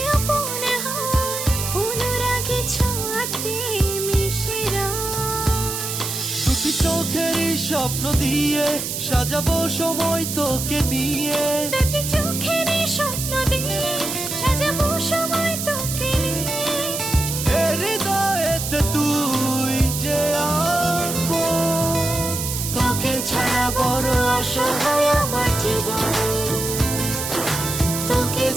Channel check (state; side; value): noise; right; hiss, 4 dB below the sound